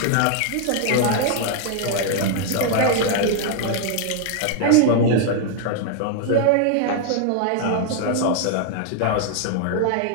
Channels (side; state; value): both; different; correlation 0.00